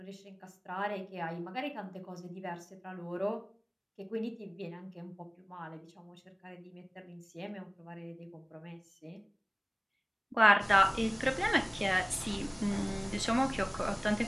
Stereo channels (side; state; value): both; identical; correlation 1.00